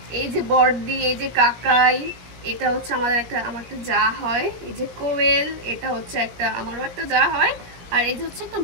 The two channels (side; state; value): left; late; 17 ms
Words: এই যে বড়দি, এই যে কাকাই, এটা হচ্ছে আমার একটা যা হয়, এই যে কোয়েল, এটা হচ্ছে আমারও একটা যা হয়, আর এই যে হচ্ছে একটা